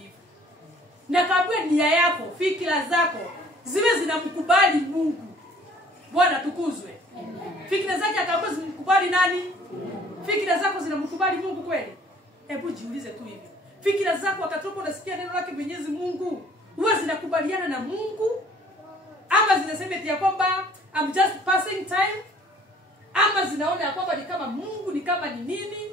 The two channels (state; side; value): normal; both; correlation 0.55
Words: Na kaambiwa nia yako, fikra zako ziwe zinamkubali Mungu. Bwana tukuzwe. Fikra zake akaambiwa zimkubali nani? Fikra zako zinamkubali Mungu kweli? Hebu jiulize tu hivi. Fikra zako wakati unasikia neno lake Mwenyezi Mungu, huwa zinakubaliana na Mungu? Ama zinasema eti ya kwamba I'm just passing time? Ama zinaona ya kwamba ni kama Mungu, ni kama ni nini?